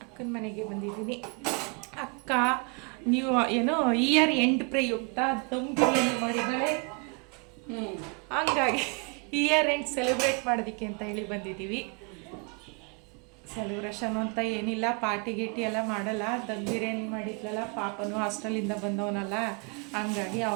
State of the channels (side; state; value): left; quieter; 34.3 dB